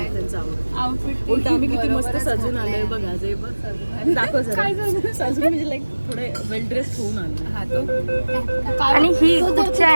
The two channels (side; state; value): both; inverted; correlation -1.00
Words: त्यांचं आउटफिट उलट आम्ही किती मस्त सजून आलोय बघा. जे बघ दाखव सजून म्हणजे लाईक थोडे वेल ड्रेस होऊन आलो. आणि ही कुठच्या